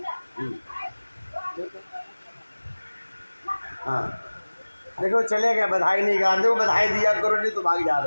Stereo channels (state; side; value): inverted; both; correlation -1.00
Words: हाँ देखो चले गए, बधाई नहीं गा, देखो बधाई दिया करो नहीं तो भाग जा